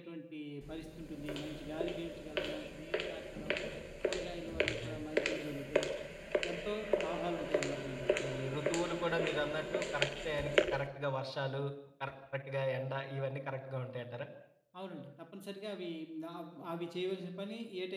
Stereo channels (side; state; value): both; identical; correlation 1.00